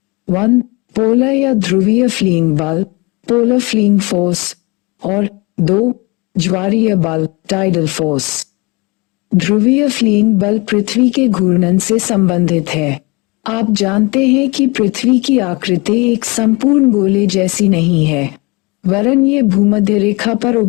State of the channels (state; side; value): quieter; right; 27.0 dB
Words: 1. पोलर या ध्रुवीय फ्लीइंग बल पोलर फ्लीइंग फोर्स और 2. ज्वारीय बल टाइडल फोर्स। ध्रुवीय फ्लीइंग बल पृथ्वी के घूर्णन से संबंधित है। आप जानते हैं कि पृथ्वी की आकृति एक संपूर्ण गोले जैसी नहीं है, वरन ये भूमध्य रेखा पर